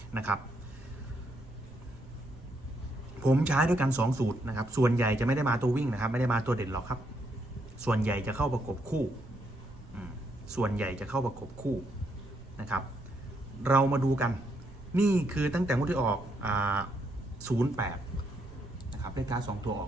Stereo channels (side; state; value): right; noise; rumble, 19 dB below the sound